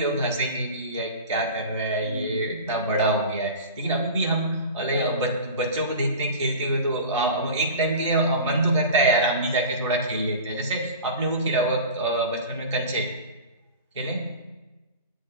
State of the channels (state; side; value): inverted; both; correlation -0.34